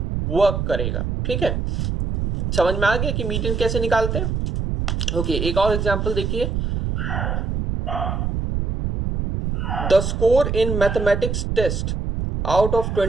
वर्क करेगा, ठीक है। समझ में आ गया कि मीडियन कैसे निकालते हैं। ओके, एक और एग्जांपल देखिए, the score in mathematics test out of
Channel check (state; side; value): noise; right; rumble, 1 dB below the sound